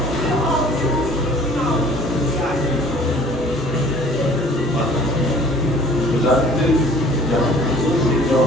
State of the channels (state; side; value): normal; both; correlation 0.51